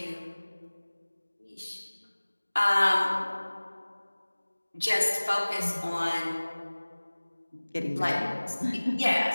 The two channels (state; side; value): inverted; both; correlation -1.00